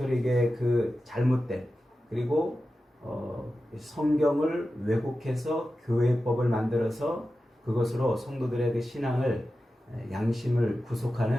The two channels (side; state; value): both; normal; correlation 0.93